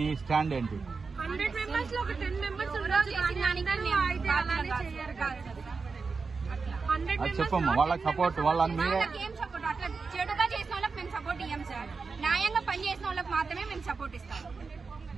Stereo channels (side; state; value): left; quieter; 4.6 dB